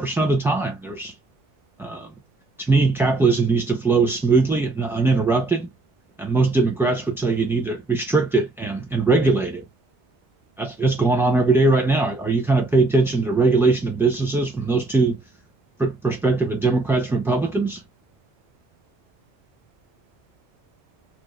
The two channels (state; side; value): quieter; left; 3.1 dB